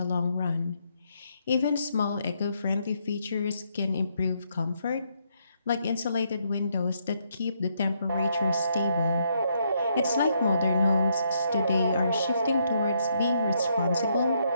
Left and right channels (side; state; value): both; inverted; correlation -0.75